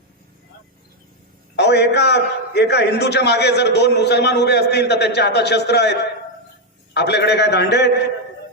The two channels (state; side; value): normal; both; correlation 0.03